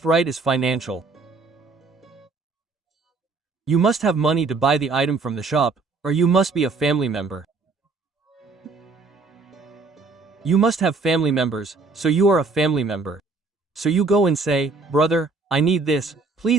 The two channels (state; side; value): quieter; left; 3.9 dB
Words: right is financial. You must have money to buy the item from the shop, or you must be a family member. You must have family members, so you are a family member. So you go and say, "Brother, I need this,